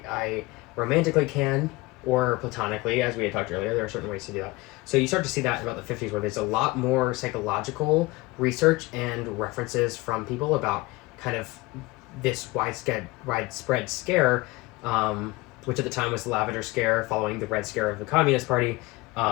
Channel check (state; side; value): quieter; right; 22.1 dB